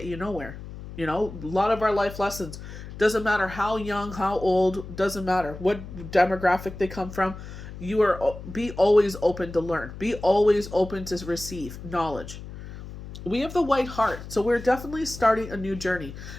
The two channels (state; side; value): noise; left; hum, 12 dB below the sound